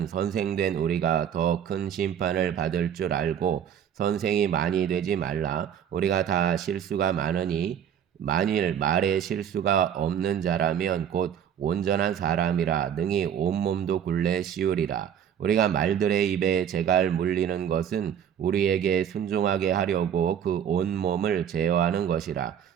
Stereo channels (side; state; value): left; quieter; 8.9 dB